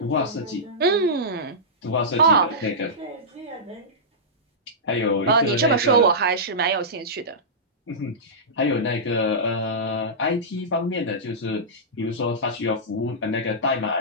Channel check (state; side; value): normal; both; correlation -0.15